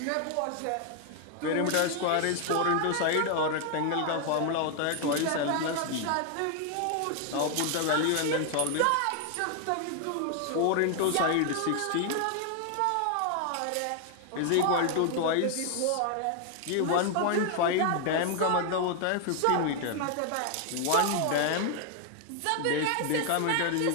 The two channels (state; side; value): different; both; correlation 0.00